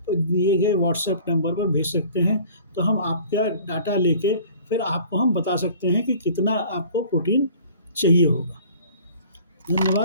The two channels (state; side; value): inverted; both; correlation -0.49